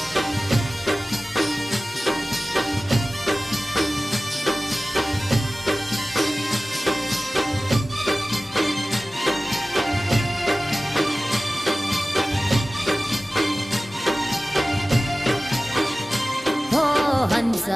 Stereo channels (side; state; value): both; normal; correlation 0.97